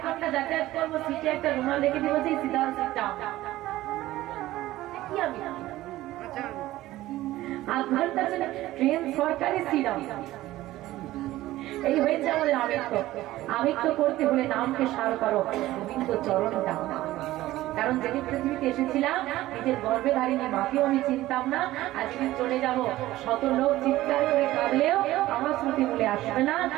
ঘন্টা যাতায়াত করবো, সিটে একটা রুমাল রেখে দিব যে সিধা সিটটা কি আমি 8 ঘন্টা চলে ট্রেন সরকারি সিট এই হয়েছে আমাদের আমিত্ব। আমিত্ব করতে হলে নামকে সার করো, গোবিন্দ চরণ দাও। কারণ যেদিন পৃথিবীতে এসেছিলাম নিজের গর্ভে ধারিনি মাকেও আমি চিনতাম না, আজকে চলে যাব শত লোক চিৎকার করে কাঁদলেও আমার স্মৃতি বলে আসবে না।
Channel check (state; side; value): quieter; left; 16.1 dB